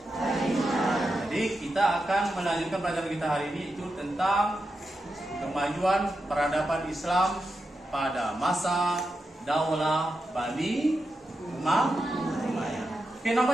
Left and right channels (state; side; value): normal; both; correlation 0.88